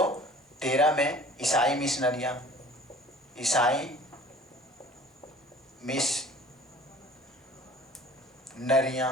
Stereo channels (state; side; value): normal; both; correlation 0.48